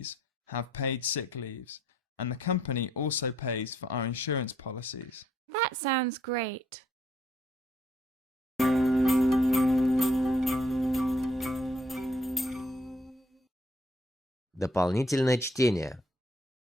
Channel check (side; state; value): both; normal; correlation 0.67